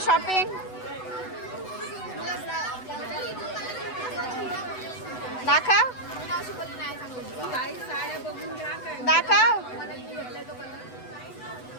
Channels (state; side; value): late; right; 8.0 ms